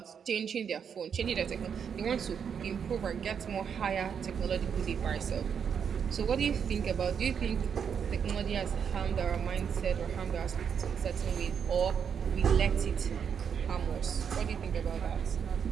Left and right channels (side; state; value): left; quieter; 7.3 dB